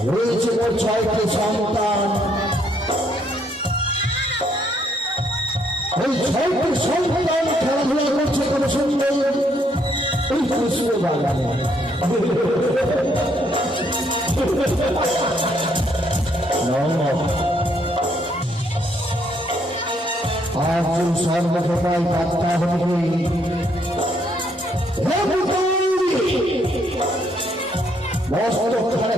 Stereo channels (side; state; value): both; normal; correlation 0.71